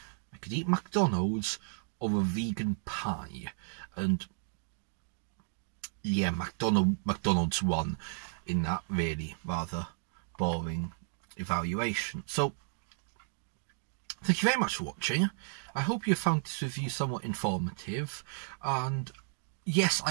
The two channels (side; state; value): left; silent; digital silence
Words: I could eat McDonald's or a vegan pie. And yeah, McDonald's won in that really rather boring evaluation. So, thank you very much for watching. I hope you found this review somewhat informative, and yes,